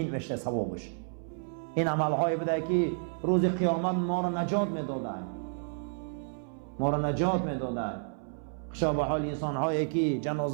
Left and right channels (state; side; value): silent; left; 57 dB below the other